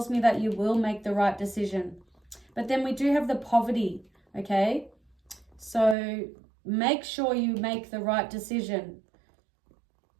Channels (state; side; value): drops out; left; at 6.0 s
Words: me that you will make the right decision. But then we do have the poverty, okay? So make sure you make the right decision.